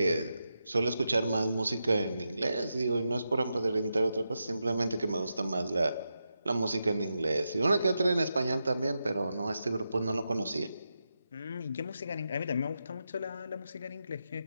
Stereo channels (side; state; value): both; inverted; correlation -0.87